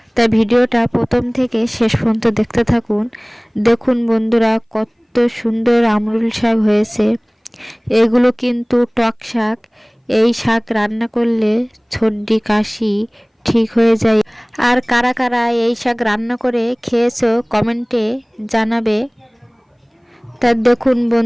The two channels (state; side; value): identical; both; correlation 1.00